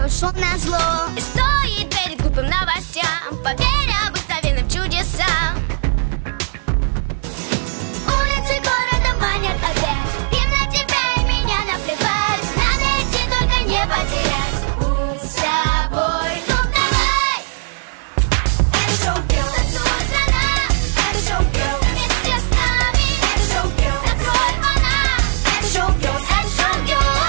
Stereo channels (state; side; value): silent; left; 63 dB below the other